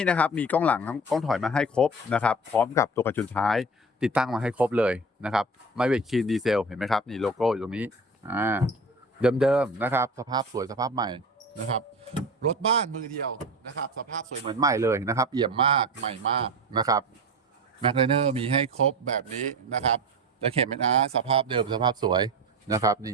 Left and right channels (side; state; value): both; normal; correlation 0.31